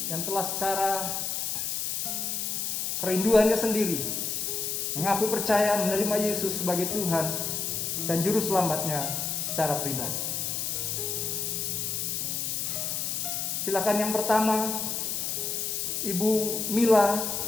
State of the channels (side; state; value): left; noise; hiss, 1 dB below the sound